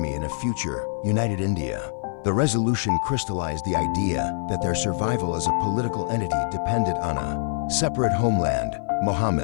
in a future, united India. The resolution crystallized the idea that their survival as a political entity depended on a separate homeland.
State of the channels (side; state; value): right; silent; 56 dB below the other